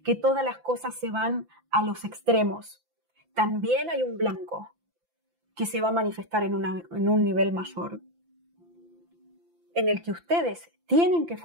que todas las cosas se van a los extremos, también hay un blanco que se va a manifestar en un nivel mayor, en el que ustedes tienen que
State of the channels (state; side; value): late; left; 5.9 ms